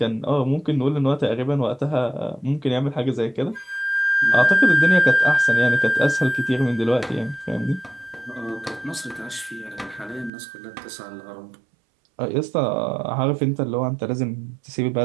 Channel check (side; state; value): left; drops out; at 10.3 s